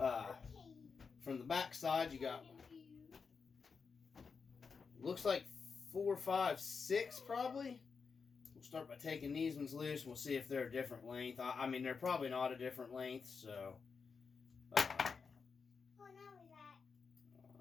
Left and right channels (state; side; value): quieter; right; 5.4 dB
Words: From the back side, you got, looks like 4, 5, 6 probably. We'll start by taking these ones loose and we'll see if they're a different length. I mean, they're probably not a different length, so. Alright.